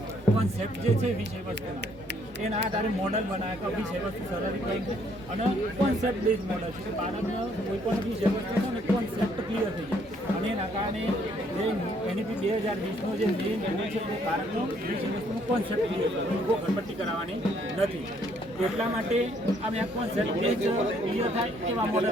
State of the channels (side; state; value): both; normal; correlation 0.66